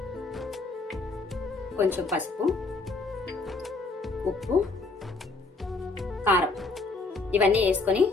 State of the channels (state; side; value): quieter; right; 3.6 dB